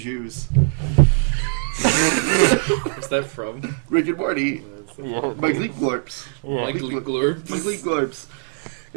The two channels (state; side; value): silent; left; 60 dB below the other